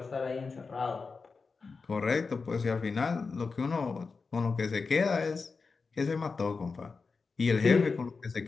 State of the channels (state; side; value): quieter; right; 4.6 dB